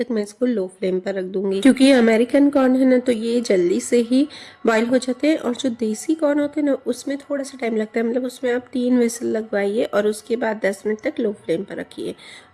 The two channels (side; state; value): both; identical; correlation 1.00